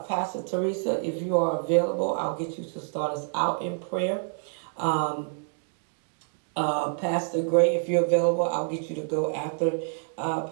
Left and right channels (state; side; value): silent; left; digital silence